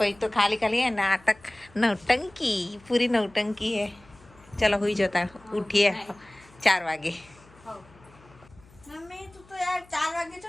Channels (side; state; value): left; noise; hum, 26 dB below the sound